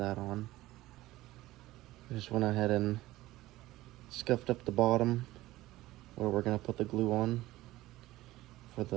on. I just went ahead and scuffed up the bottom where we're going to put the glue on for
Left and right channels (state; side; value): quieter; left; 17.1 dB